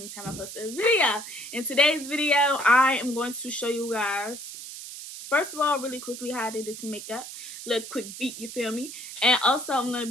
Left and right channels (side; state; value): right; noise; hiss, 11 dB below the sound